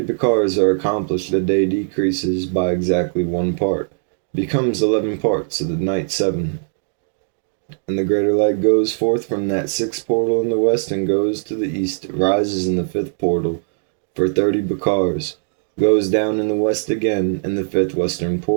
bakars are accomplished, the day decreases by exactly 1 part, becomes 11 parts, so the night 7. And the greater light goes forth from that 6th portal in the west and goes to the east, rises in the 5th portal for 30 bakars, goes down in the west again in the 5th western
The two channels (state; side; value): silent; left; digital silence